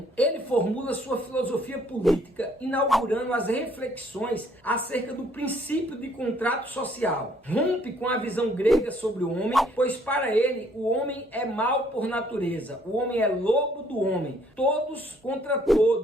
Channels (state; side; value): normal; both; correlation 0.64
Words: ele formula sua filosofia política, inaugurando as reflexões acerca do princípio de contrato social. Rompe com a visão grega sobre o homem, pois para ele o homem é mau por natureza. O homem é lobo do homem, todos contra